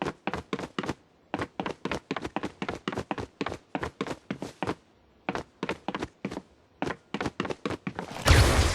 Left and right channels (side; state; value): both; identical; correlation 1.00